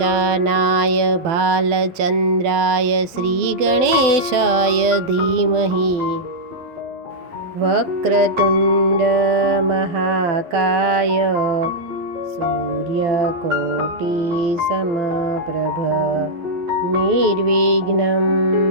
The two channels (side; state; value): left; late; 12 ms